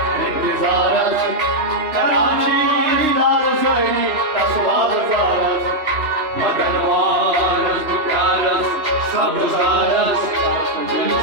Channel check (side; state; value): left; late; 2.9 ms